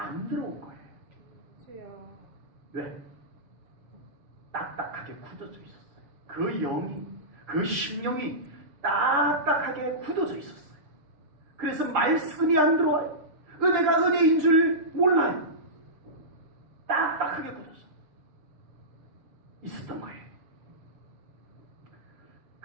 들어온 거예요. 주여. 왜? 딱딱하게 굳어져 있었어요. 그 영이, 그 심령이 딱딱하게 굳어져 있었어요. 그래서 말씀이 안 들어와요. 은혜가 은혜인 줄 몰라요. 딱딱하게 굳어져 있었던 거예요.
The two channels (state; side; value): late; left; 6.6 ms